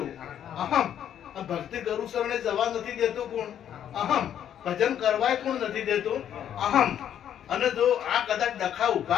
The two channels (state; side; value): quieter; right; 9.9 dB